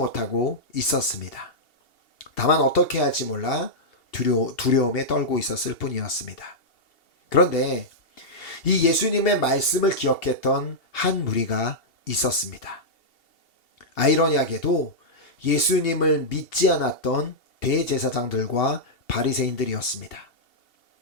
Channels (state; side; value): late; right; 2.7 ms